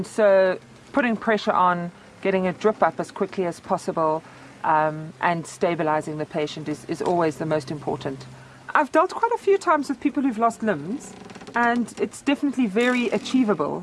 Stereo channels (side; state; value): both; identical; correlation 1.00